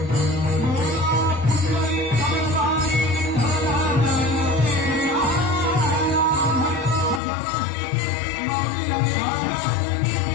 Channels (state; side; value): drops out; right; at 7.2 s